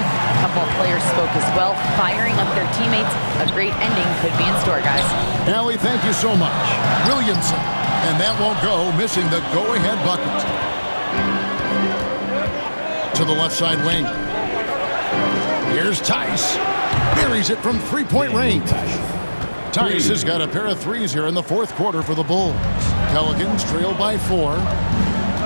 couple of players spoke as well, firing up their teammates. A great ending could be in store, guys. Allie, thank you so much. Williamson. And that won't go, missing the go-ahead bucket. To the left side wing. Here's Tice. Buries it from three-point range. Tice has got a pair of threes here in the fourth quarter for the Bulls. Pelicans trail by 4.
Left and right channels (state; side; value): inverted; both; correlation -1.00